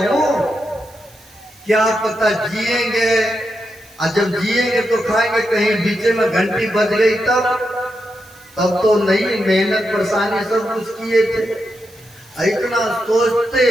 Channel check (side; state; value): right; noise; hiss, 26 dB below the sound